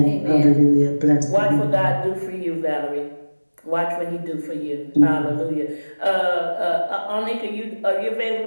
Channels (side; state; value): both; inverted; correlation -1.00